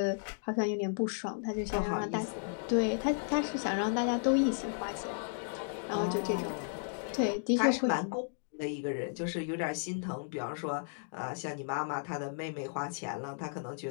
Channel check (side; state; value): right; silent; digital silence